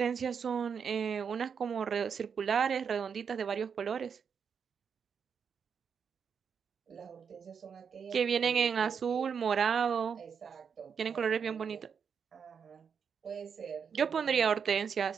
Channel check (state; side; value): quieter; left; 6.7 dB